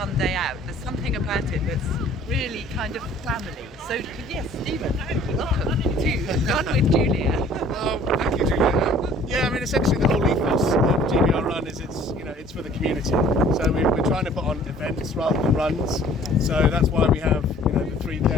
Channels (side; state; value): both; normal; correlation 0.53